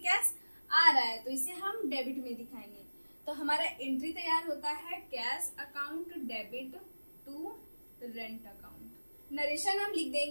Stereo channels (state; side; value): inverted; both; correlation -1.00